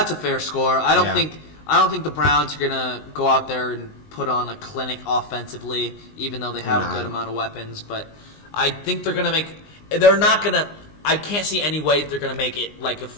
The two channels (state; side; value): late; right; 19 ms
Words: fair score. I don't Yeah. think the Browns are gonna go out there and put on a clinic offensively, even though they have a good amount of weapons. But I think they're gonna make. They're not gonna. I can't see any way they're gonna make it like a